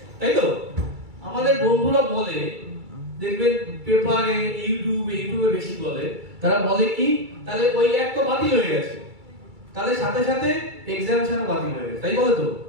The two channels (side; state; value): left; late; 2.3 ms